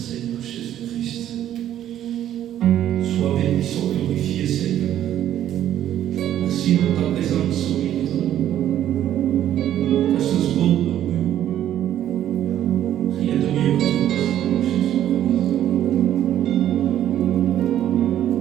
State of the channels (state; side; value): quieter; left; 11.5 dB